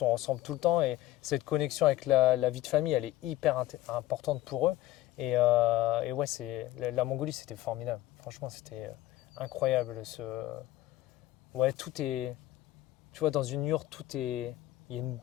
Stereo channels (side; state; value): right; quieter; 15.7 dB